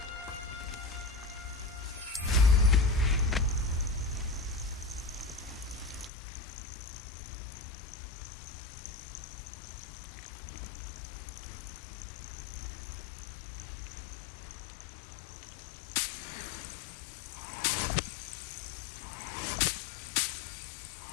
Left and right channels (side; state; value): right; drops out; at 6.1 s